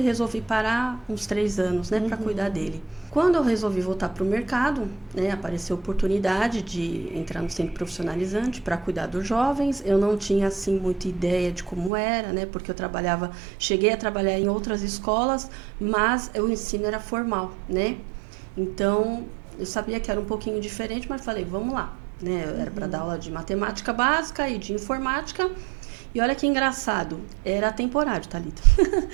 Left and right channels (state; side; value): drops out; left; at 11.9 s